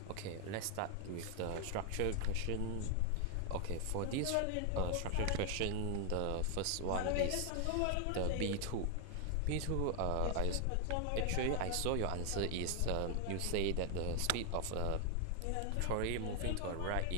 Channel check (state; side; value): different; both; correlation 0.00